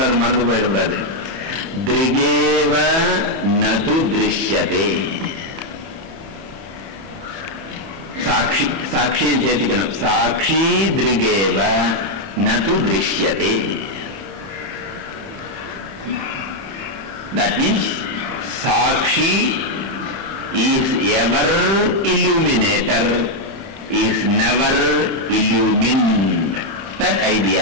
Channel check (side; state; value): left; late; 31 ms